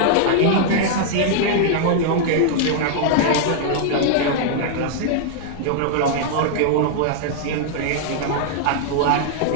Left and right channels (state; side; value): different; both; correlation -0.01